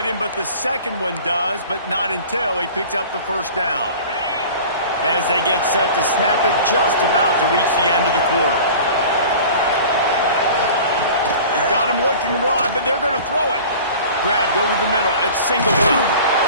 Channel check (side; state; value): both; inverted; correlation -0.41